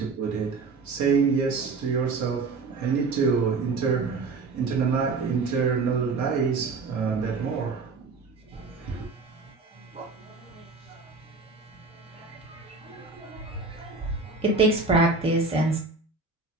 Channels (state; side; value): quieter; left; 4.1 dB